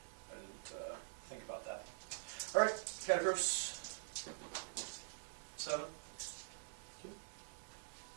I didn't think about that. Alright, Catacross. 7. 2. So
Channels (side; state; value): left; silent; digital silence